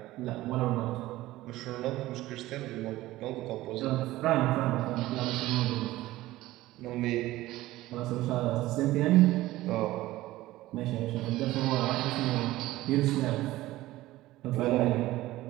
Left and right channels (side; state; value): left; quieter; 16.9 dB